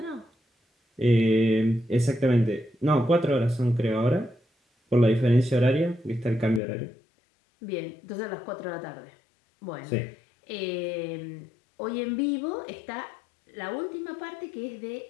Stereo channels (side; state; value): right; drops out; at 6.6 s